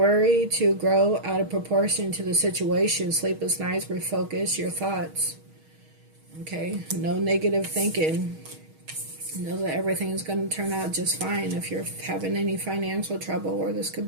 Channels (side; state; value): left; late; 6.4 ms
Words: to grow out of proportion to the situation. Sleepless nights, refocus your thoughts. Okay? No negative thinking. Know that everything's going to turn out just fine. If you're having any financial trouble, or this could